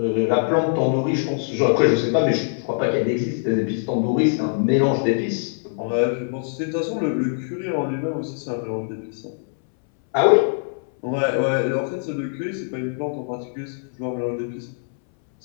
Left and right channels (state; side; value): silent; right; 64 dB below the other